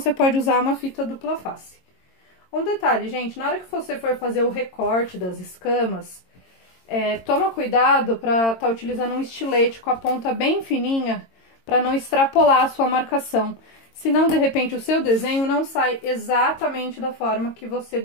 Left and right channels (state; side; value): late; right; 22 ms